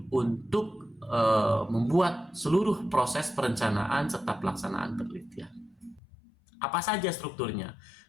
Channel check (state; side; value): drops out; right; at 6.0 s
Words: untuk membuat seluruh proses perencanaan serta pelaksanaan penelitian. Apa saja strukturnya?